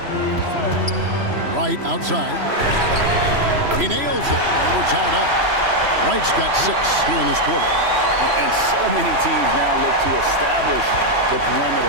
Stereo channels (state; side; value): late; left; 3.0 ms